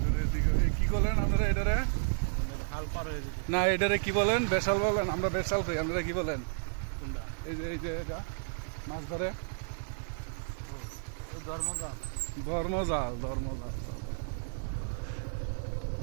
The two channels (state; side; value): silent; left; 56 dB below the other